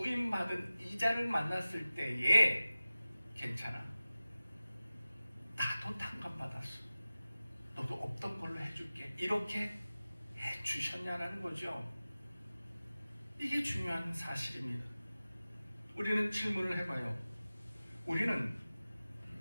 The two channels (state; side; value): inverted; both; correlation -0.96